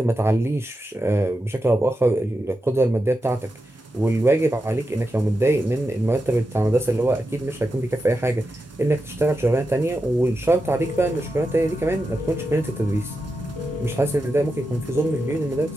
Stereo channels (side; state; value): both; normal; correlation 0.89